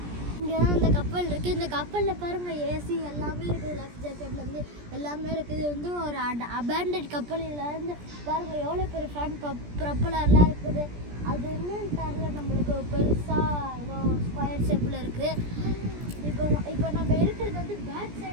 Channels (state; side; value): late; left; 17 ms